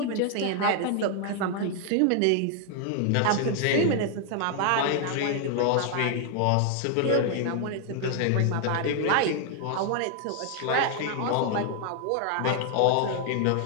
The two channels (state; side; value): different; both; correlation 0.00